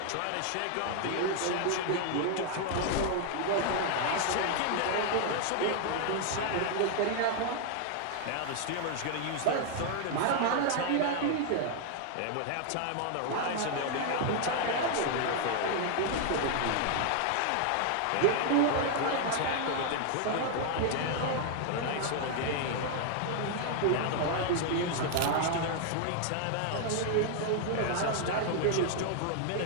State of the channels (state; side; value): different; both; correlation 0.00